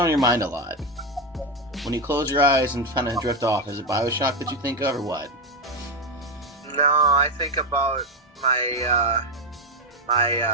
your mind a lot? When you close your eyes and kind of drift off, is it BioShock that you think of, or what? No, I think about my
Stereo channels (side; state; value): both; normal; correlation 0.10